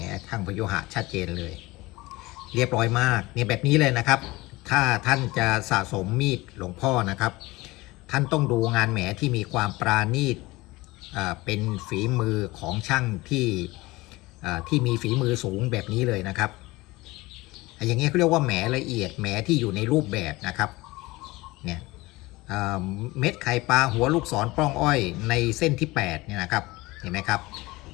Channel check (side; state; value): right; quieter; 21.0 dB